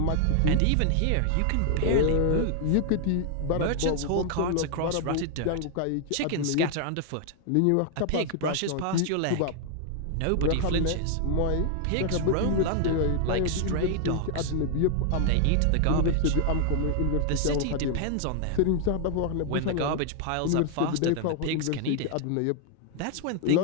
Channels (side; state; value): both; different; correlation 0.00